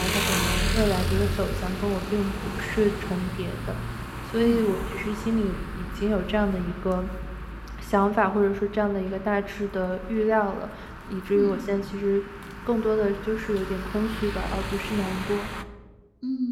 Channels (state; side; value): identical; both; correlation 1.00